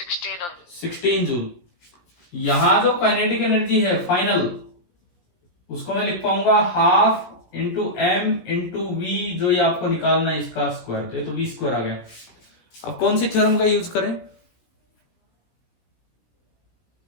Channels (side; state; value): right; late; 17 ms